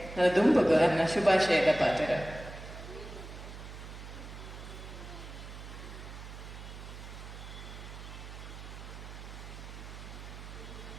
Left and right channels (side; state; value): right; noise; hum, 12 dB below the sound